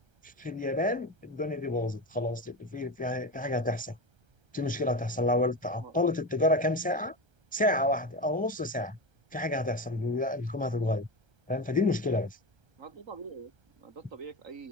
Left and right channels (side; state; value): left; late; 1.3 ms